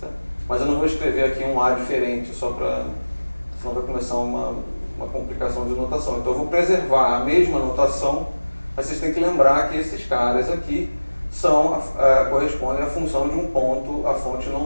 Mas eu não vou escrever aqui um A diferente, só para, senão vai começar uma complicação de notação. Então eu vou preservar a mesma notação, mas vocês têm que lembrar que esses caras aqui correspondem à função de um ponto, a fonte não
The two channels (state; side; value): inverted; both; correlation -1.00